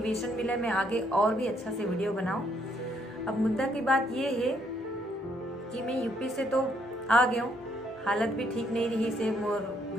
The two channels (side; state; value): both; normal; correlation 0.71